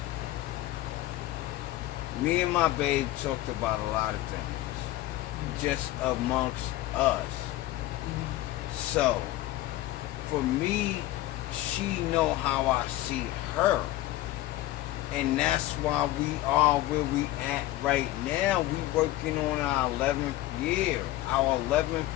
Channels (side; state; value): right; quieter; 16.0 dB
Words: me and my babe talked about a lot of things just amongst us. So for me, she know how I see her. And that's why we are where we at right now. We working on our 11th